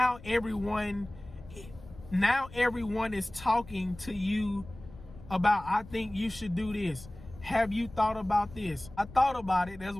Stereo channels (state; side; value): noise; left; rumble, 18 dB below the sound